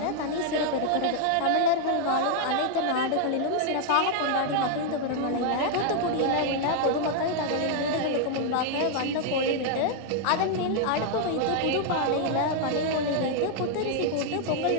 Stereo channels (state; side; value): different; both; correlation 0.00